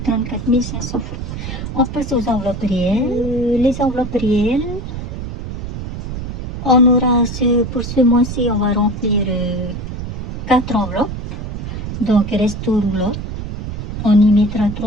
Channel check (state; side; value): noise; right; rumble, 6 dB below the sound